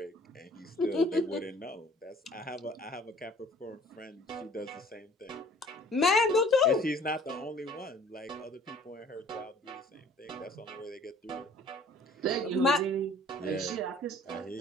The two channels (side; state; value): both; normal; correlation 0.53